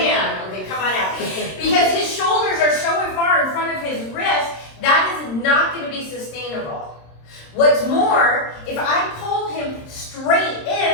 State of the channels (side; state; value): right; late; 26 ms